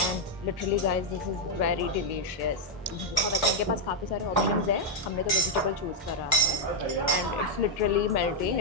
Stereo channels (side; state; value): both; normal; correlation -0.02